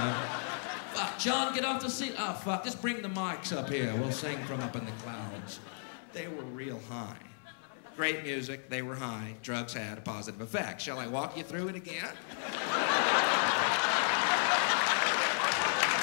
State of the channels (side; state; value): right; silent; 55 dB below the other